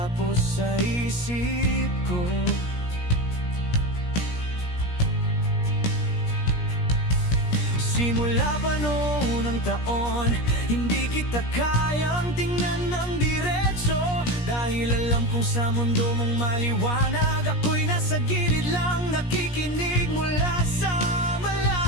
sa isip ko. Simula pa noon ang taon, hindi kita kayang tingnan ng diretso, dahil alam kong sa mundo mong maliwanag, ako'y nasa gilid lang, nakikinig mula sa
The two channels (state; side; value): late; right; 17 ms